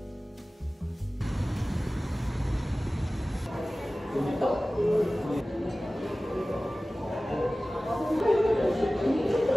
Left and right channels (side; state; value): both; normal; correlation 0.97